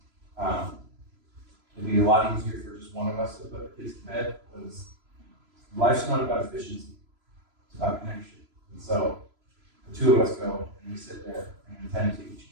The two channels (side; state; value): left; late; 3.0 ms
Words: it'd be a lot easier for just one of us to put the kids to bed, because life's not about efficiency, it's about connection. And so the two of us go and we sit there and attend to each